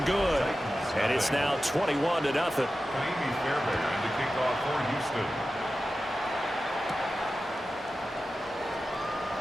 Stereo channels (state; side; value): normal; both; correlation 0.93